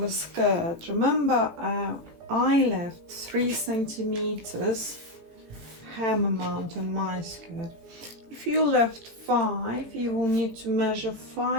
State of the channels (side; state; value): left; late; 18 ms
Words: a skirt. Remember, I left 3 centimeters hem amount on my skirt. If you left 5, you will need to measure